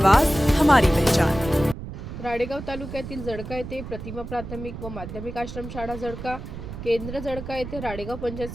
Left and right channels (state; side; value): noise; right; rumble, 10 dB below the sound